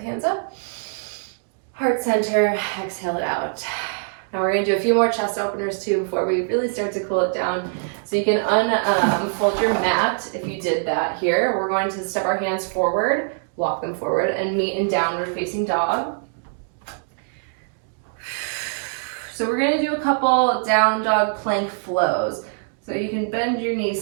hands up. Heart center, exhale it out. Now we're going to do a few more chest openers too before we really start to cool it down. So you can unfold your mat if you did that here. We're going to step our hands forward, walk them forward, and meet in downward facing dog. So we're going to do a couple down dog plank flows. So you can bend your knees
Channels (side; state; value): left; silent; digital silence